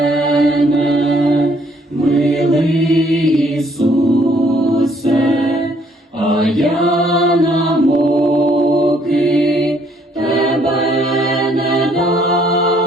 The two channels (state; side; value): normal; both; correlation 0.65